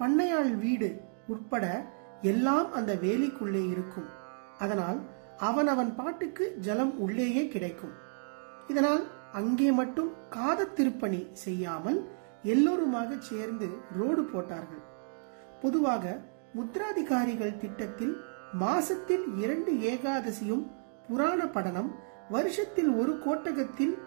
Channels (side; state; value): left; silent; digital silence